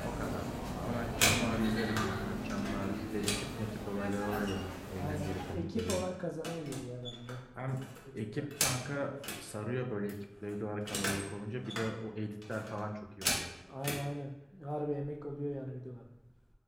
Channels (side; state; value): both; identical; correlation 1.00